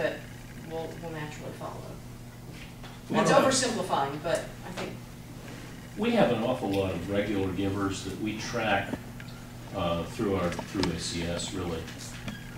will naturally follow. It's oversimplifying, but I think we have an awful lot of regular givers that we track through ACS really,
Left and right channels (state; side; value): identical; both; correlation 1.00